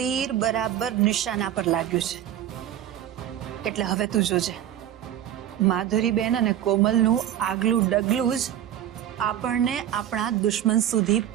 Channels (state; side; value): quieter; left; 11.2 dB